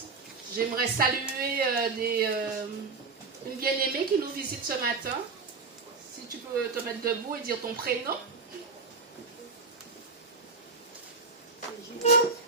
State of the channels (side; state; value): left; quieter; 4.3 dB